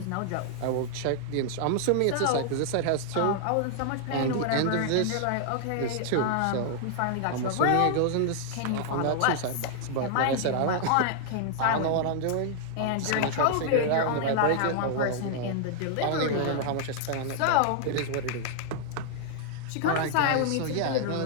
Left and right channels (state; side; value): different; both; correlation -0.01